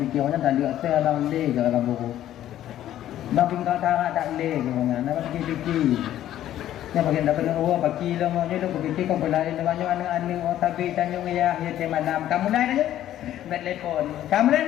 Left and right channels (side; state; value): right; quieter; 12.4 dB